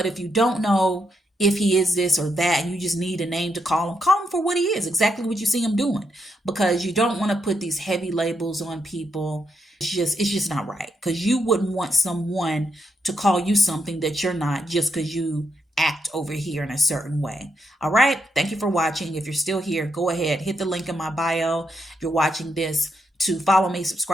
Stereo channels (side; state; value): both; normal; correlation 0.80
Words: if you don't know if he is this or that, and you just need a name to call him for what he is, exactly what you see him doing. Because you don't want to put these heavy labels on people. It's just not right. Because you wouldn't want someone to call you something that you're not just because you act over here in a certain way. All right. Thank you for watching. If you're still here, go ahead, hit the link in my bio. If you're watching this, to follow me,